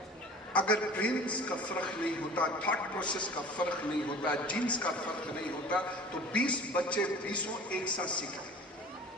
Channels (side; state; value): both; normal; correlation 0.43